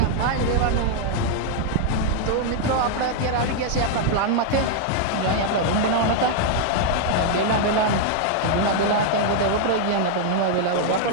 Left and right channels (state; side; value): different; both; correlation 0.00